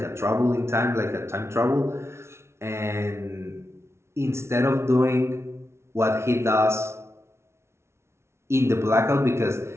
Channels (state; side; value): late; left; 0.13 ms